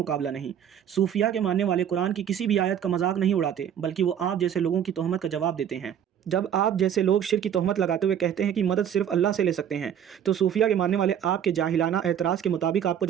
नहीं। सूफिया के मानने वाले कुरान की किसी भी आयत का मजाक नहीं उड़ाते, बल्कि वो आप जैसे लोगों की तोहमत का जवाब देते हैं। जब आप जैसे लोग शिर्क की तोहमत लगाते हुए कहते हैं कि मदद सिर्फ अल्लाह से ले सकते हैं, तो सूफिया के मानने वाले आपके जाहिलाना एतराज़ के मुताबिक आपको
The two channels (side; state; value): left; quieter; 9.2 dB